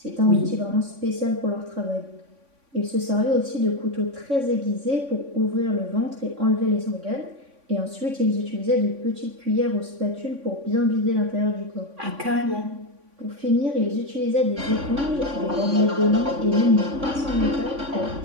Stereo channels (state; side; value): late; left; 3.5 ms